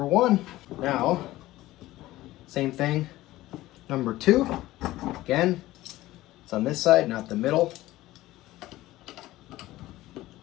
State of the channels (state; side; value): quieter; right; 16.7 dB